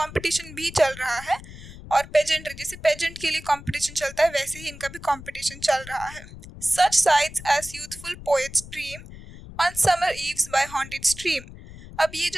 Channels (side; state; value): left; noise; rumble, 16 dB below the sound